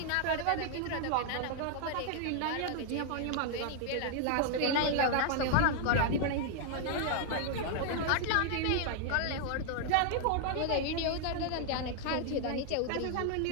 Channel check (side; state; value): both; different; correlation 0.00